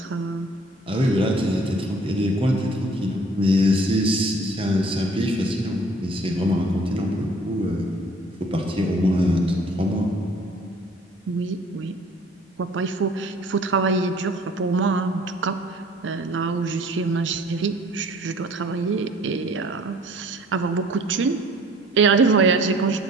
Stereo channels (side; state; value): both; normal; correlation 0.53